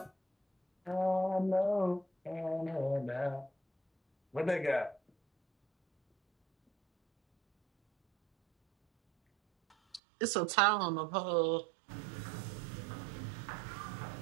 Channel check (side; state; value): left; drops out; at 10.0 s